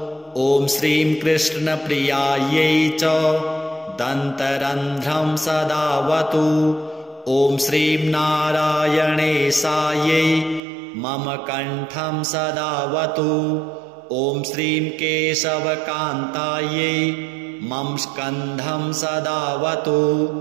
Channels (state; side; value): drops out; left; at 10.6 s